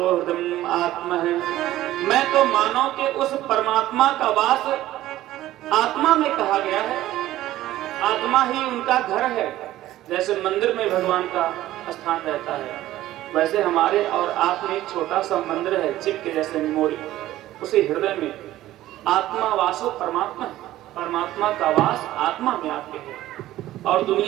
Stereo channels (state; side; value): quieter; left; 14.8 dB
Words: हृदय आत्मा है। मैं तो मानव के उस परमात्मा का वास आत्मा में कहा गया है। आत्मा ही उनका घर है। जैसे मंदिर में भगवान का स्थान रहता है, वैसे हमारे और आप में एक छोटा सा मंदिर है, चिप के जैसे मेमोरी, उसी हृदय में आत्मा वासो परमात्मा है। परमात्मा का वास आत्मा में आपके है। और